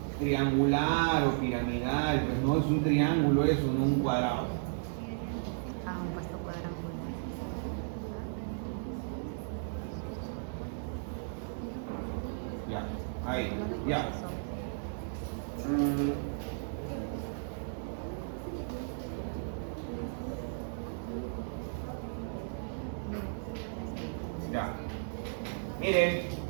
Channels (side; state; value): left; silent; digital silence